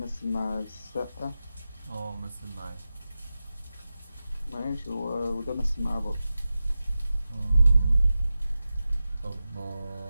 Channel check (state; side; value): inverted; both; correlation -0.93